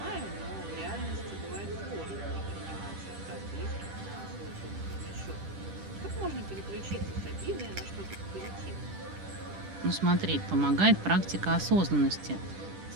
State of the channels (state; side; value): late; left; 10 ms